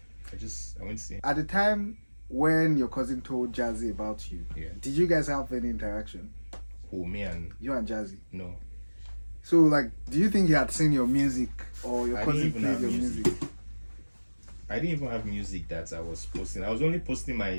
went to see him. At the time when your cousin told Jazzy about you, did you guys have any interaction? Who, me and... You and Jazzy? No. So, like, do you think he had seen your music, or your cousin played your music? I didn't even have music that I was posting. I was only posting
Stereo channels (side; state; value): both; inverted; correlation -1.00